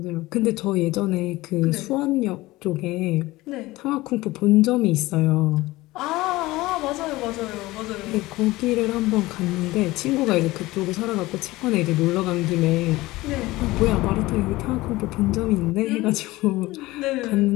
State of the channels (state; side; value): quieter; right; 19.2 dB